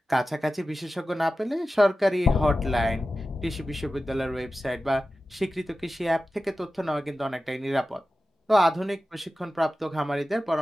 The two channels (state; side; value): normal; both; correlation 0.94